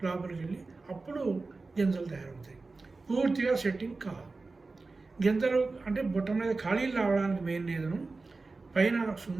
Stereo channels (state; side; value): quieter; left; 3.7 dB